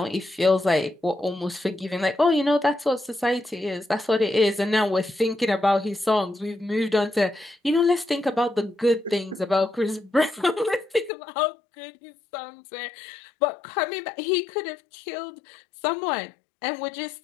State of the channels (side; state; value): right; drops out; at 11.1 s